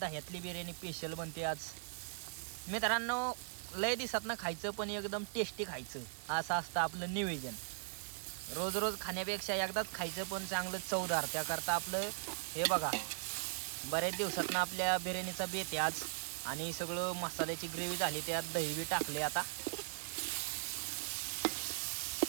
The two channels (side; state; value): left; silent; digital silence